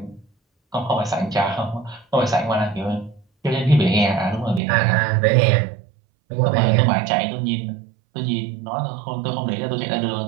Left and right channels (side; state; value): left; drops out; at 4.6 s